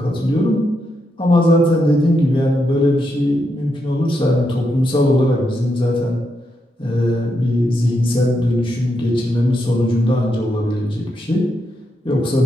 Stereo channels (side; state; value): both; normal; correlation 0.82